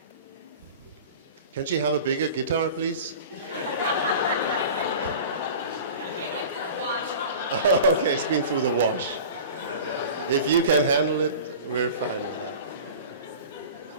Can she have a bigger guitar, please? Okay, it's been through the wash. If you can handle it, we're fine with that.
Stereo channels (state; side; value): inverted; both; correlation -0.38